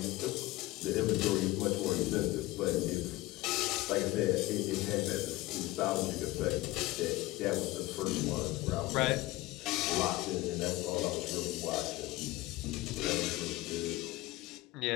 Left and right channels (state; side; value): quieter; right; 19.0 dB